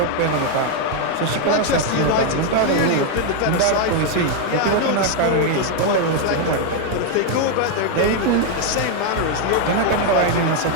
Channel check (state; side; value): different; both; correlation 0.01